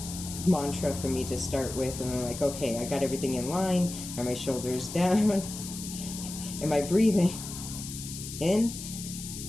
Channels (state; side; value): noise; left; hiss, 9 dB below the sound